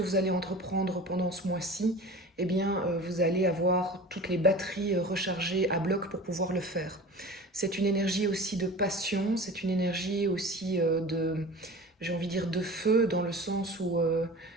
allez entreprendre pendant ce mois-ci, eh bien, vous allez avoir toutes les batteries rechargées à bloc pour pouvoir le faire. C'est une énergie aussi de passion, c'est une énergie aussi j'ai envie de dire de feu, dans le sens où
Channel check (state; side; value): normal; both; correlation 0.37